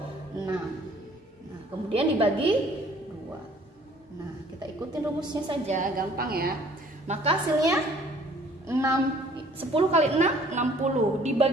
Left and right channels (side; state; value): both; normal; correlation 0.57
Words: 6. Nah, kemudian dibagi 2. Nah, kita ikutin rumusnya saja, gampang ya. Maka hasilnya 10 kali 6, 60.